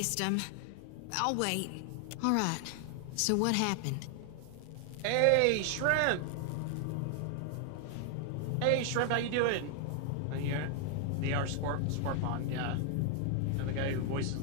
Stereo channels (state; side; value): different; both; correlation 0.00